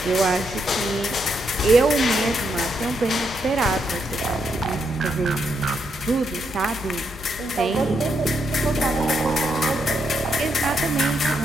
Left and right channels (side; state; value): both; normal; correlation 0.79